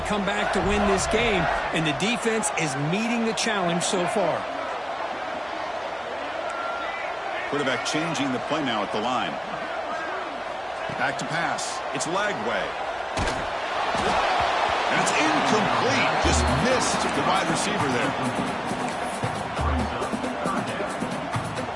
come back to win this game, and the defense is meeting the challenge so far. Quarterback changing the play now at the line. Back to pass. It's Lagway. And it's incomplete. Just missed the wide receiver there.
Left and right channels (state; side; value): identical; both; correlation 1.00